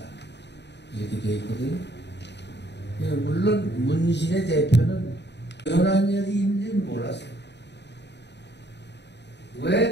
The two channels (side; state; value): right; late; 0.50 ms